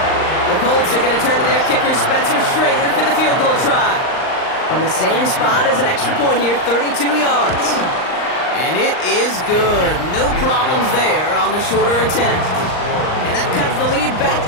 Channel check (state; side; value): late; right; 39 ms